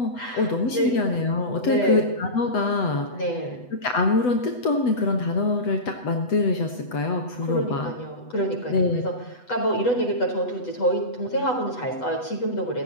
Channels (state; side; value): late; right; 8.1 ms